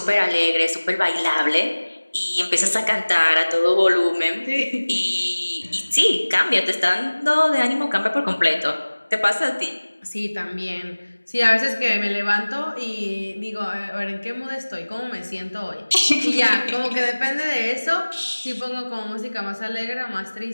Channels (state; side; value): inverted; both; correlation -1.00